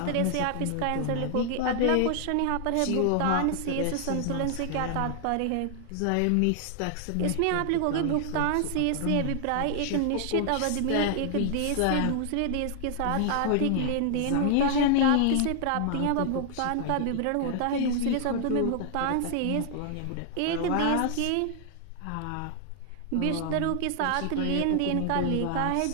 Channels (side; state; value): both; different; correlation 0.00